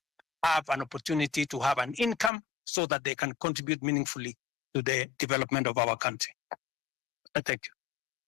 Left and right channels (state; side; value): drops out; right; at 2.3 s